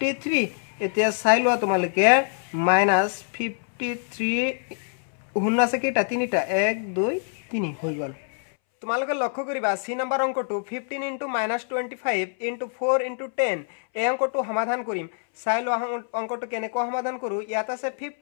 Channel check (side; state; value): right; silent; 62 dB below the other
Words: এতিয়া চাই লোৱা তোমালোকে মাইনাস 53 হুন আছে কেইটা তিনিটা 1 2 3 হৈ গল তোমালোকে লক্ষ্য কৰিবা সি নম্বৰ অংকটো 15 ইনটু -25 ইনটু 4 ইনটু 10 এই অংকটো সমাধান কৰিম চাই লোৱা অংকটো কেনেকৈ সমাধান কৰো ইয়াত আছে